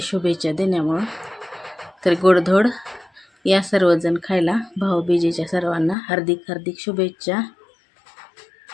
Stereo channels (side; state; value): right; drops out; at 6.0 s